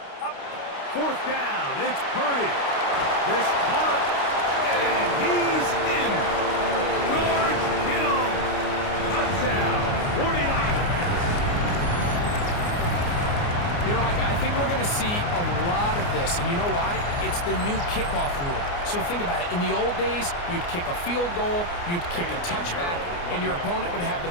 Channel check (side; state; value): right; late; 29 ms